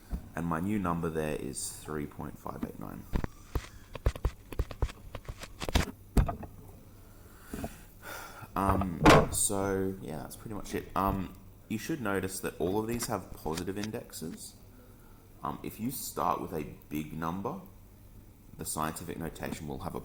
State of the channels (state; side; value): identical; both; correlation 1.00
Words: And my new number there is 3.589. So yeah, that's pretty much it. you should notice that all of these have positive indexes. If you start with a big number, the scientific notation will have a